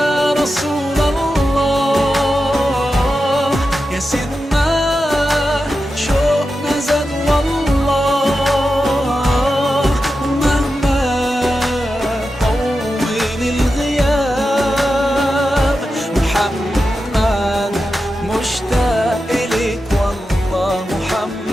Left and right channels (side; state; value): both; normal; correlation 0.91